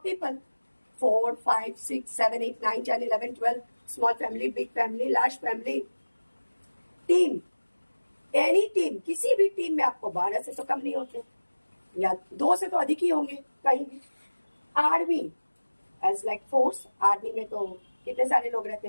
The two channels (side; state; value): both; inverted; correlation -1.00